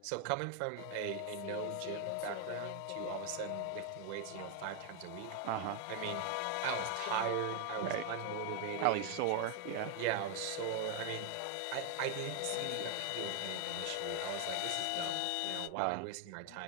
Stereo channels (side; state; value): both; different; correlation 0.00